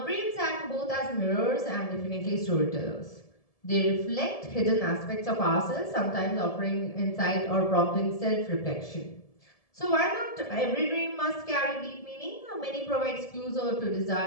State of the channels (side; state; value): right; late; 1.7 ms